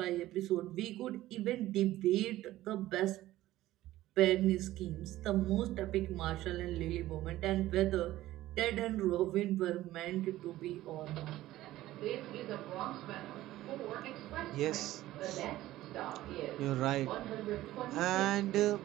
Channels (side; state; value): left; quieter; 15.5 dB